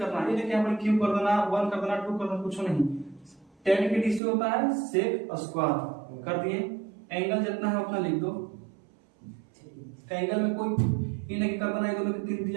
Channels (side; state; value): left; drops out; at 4.2 s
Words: ये लेके अपन क्यू कर देना, 1 कर देना, 2 कर देना, कुछ नहीं। 10 के डीसी होता है सेक स्क्वायर, कर दिए। एंगल जितना है उतना लिख दो। एंगल में कोई ये नहीं कर देना, ये दोनों के 3